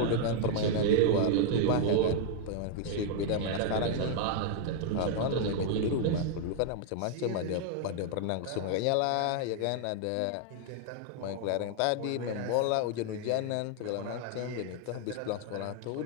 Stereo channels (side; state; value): both; different; correlation 0.00